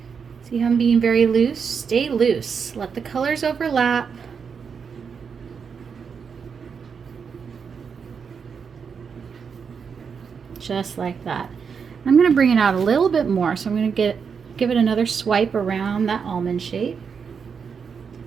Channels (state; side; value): quieter; left; 6.2 dB